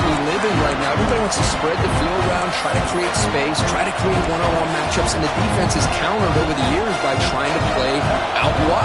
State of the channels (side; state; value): both; identical; correlation 1.00